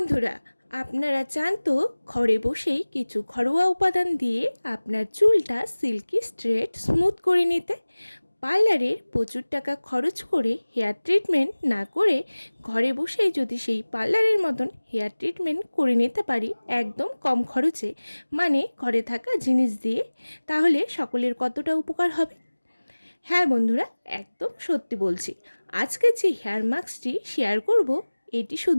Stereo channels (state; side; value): inverted; both; correlation -1.00